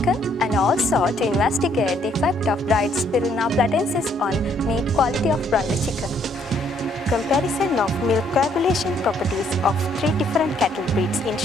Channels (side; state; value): both; normal; correlation 0.67